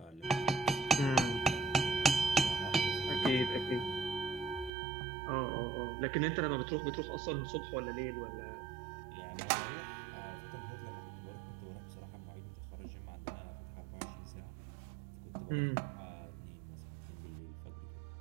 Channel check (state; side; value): drops out; left; at 4.7 s